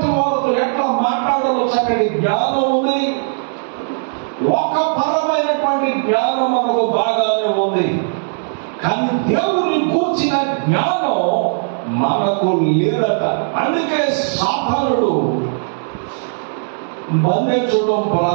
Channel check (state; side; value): silent; left; digital silence